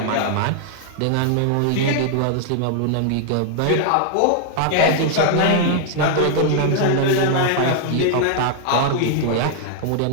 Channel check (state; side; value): different; both; correlation 0.00